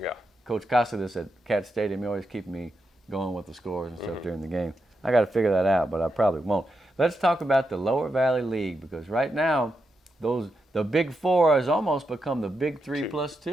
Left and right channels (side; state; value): both; normal; correlation 0.85